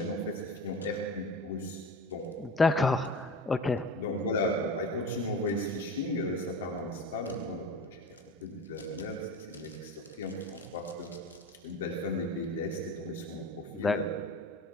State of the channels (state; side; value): normal; both; correlation 0.32